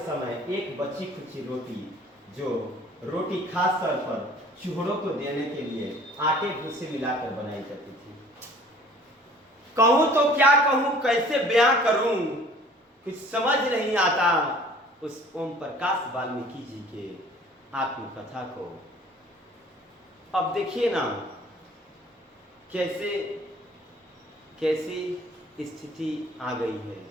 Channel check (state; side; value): normal; both; correlation 0.51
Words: समय 1 बची खुची रोटी, जो रोटी खास तौर पर चूहों को देने के लिए आटे भूसे मिलाकर बनाई जाती थी। कहूं तो क्या कहूं, कैसे बयां करूं, कुछ समझ नहीं आता उस ओम प्रकाश वाल्मीकि जी के आत्मकथा को। अब देखिए ना कैसी स्थिति आ गई है।